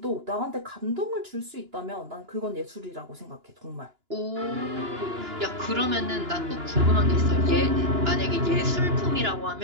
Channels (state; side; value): late; left; 2.9 ms